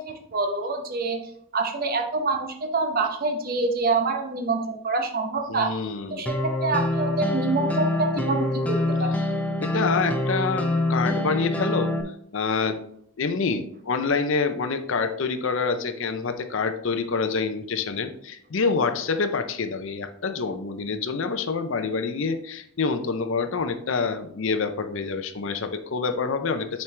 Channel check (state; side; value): normal; both; correlation 0.10